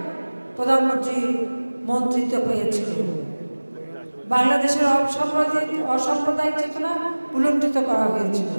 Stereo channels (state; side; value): inverted; both; correlation -1.00